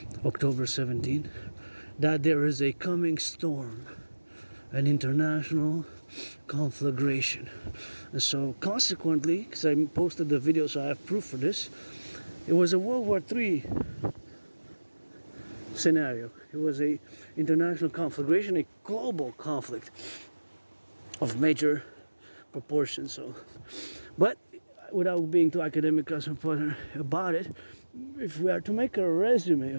October 17, that there is a coming storm, an international conflagration. And so consequently, because I posted the video so I have proof for this, it was a World War III scenario. It was a international conflagration, a global conflict of major proportions. So, but without being too academic about it, if we are to make a resume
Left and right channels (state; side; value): inverted; both; correlation -1.00